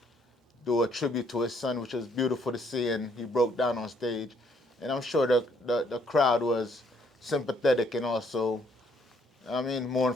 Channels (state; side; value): normal; both; correlation 0.67